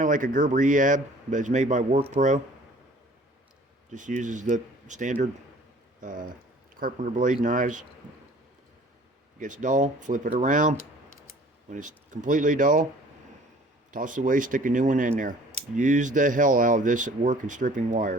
of like a Gerber EAB, but it's made by WorkPro. Just uses the standard carpenter blade knives. Gets dull, flip it around. When it's completely dull, toss it away, stick a new one in there. Use the hell out of this at work and stripping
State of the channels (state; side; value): normal; both; correlation 0.51